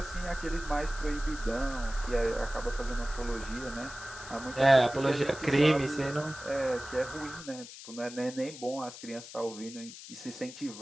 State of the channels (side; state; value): left; noise; hiss, 14 dB below the sound